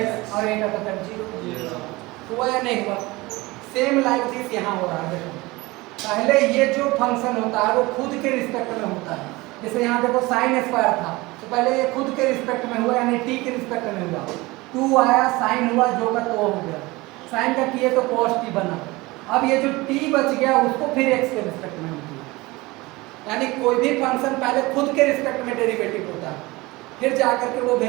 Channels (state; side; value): quieter; left; 21.8 dB